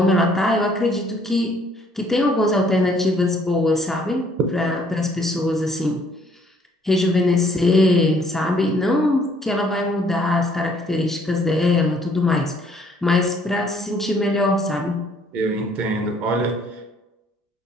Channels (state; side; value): normal; both; correlation 0.63